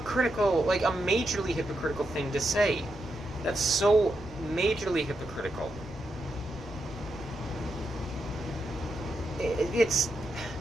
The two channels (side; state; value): right; noise; rumble, 18 dB below the sound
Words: like, a majorly hypocritical thing to say. That's so majorly hypocritical. It's...